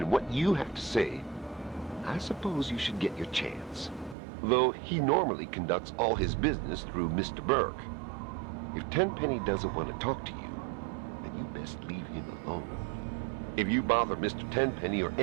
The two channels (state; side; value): drops out; left; at 4.2 s